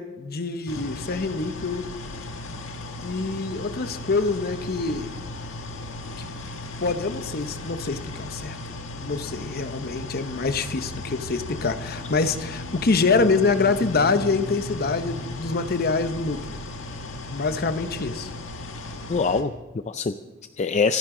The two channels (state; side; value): quieter; right; 3.5 dB